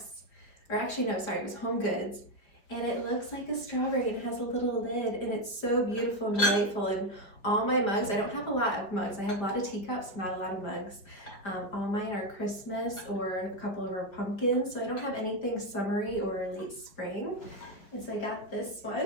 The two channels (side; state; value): right; late; 4.9 ms